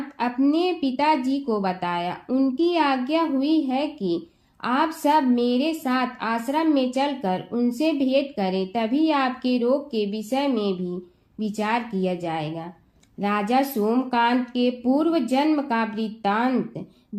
अपने पिताजी को बताया। उनकी आज्ञा हुई है कि आप सब मेरे साथ आश्रम में चलकर उनसे भेंट करें, तभी आपके रोग के विषय में भी विचार किया जाएगा। राजा सोमकांत के पूर्व जन्म का वृत्तांत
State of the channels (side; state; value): both; identical; correlation 1.00